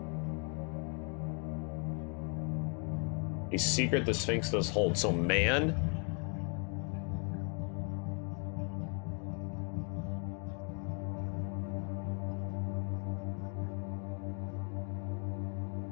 A secret the Sphinx does hold. So man.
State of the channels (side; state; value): right; quieter; 38.7 dB